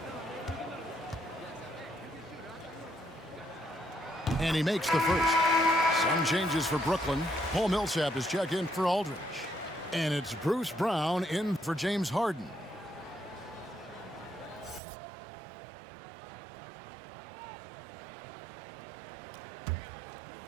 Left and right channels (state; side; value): drops out; left; at 14.8 s